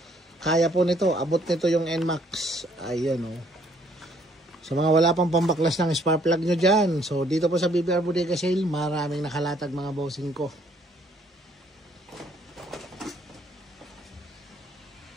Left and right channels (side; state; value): both; normal; correlation 0.65